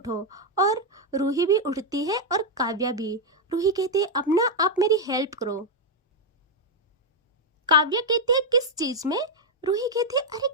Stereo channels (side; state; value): both; normal; correlation 0.00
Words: और रूही भी उठती है और काव्या भी। रूही कहती है, अब ना आप मेरी हेल्प करो। काव्या कहती है, किस चीज में? रूही कहती है, अरे